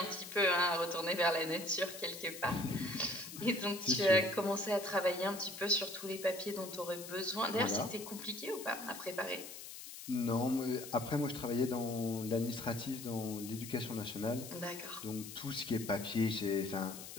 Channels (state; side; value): noise; left; hiss, 12 dB below the sound